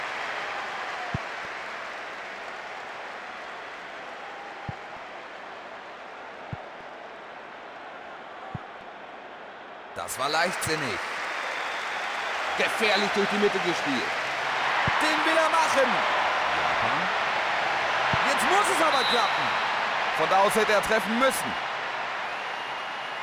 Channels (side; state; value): both; identical; correlation 1.00